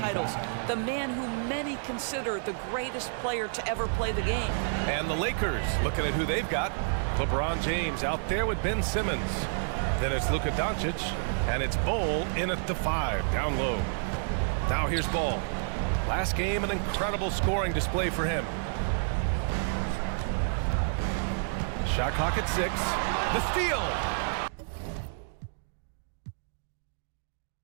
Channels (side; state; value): left; silent; digital silence